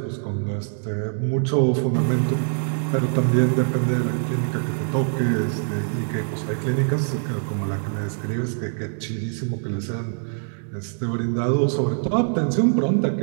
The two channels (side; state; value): left; silent; 63 dB below the other